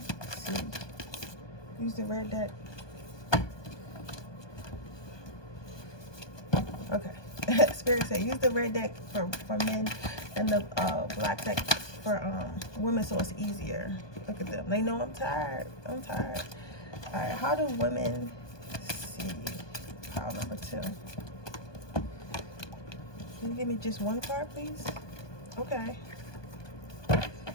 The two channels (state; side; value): late; right; 1.2 ms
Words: see? Use the red deck. Okay. Spirit said use the red deck for men and the black deck for women, so it's easier. Look at them. They know I'm tired. I'm tired. All right. How do women see pile number 2? Can you give me just 1 card, please? Okay. How